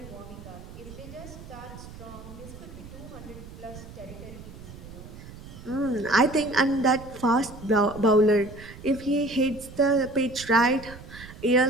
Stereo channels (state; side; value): noise; right; rumble, 15 dB below the sound